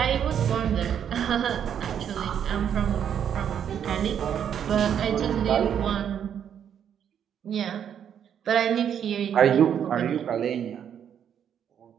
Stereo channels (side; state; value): left; quieter; 8.8 dB